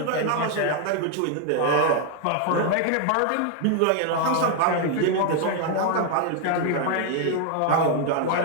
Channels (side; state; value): both; different; correlation 0.00